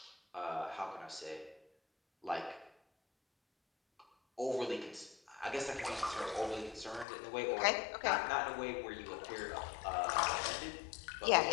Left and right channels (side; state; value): right; drops out; at 7.1 s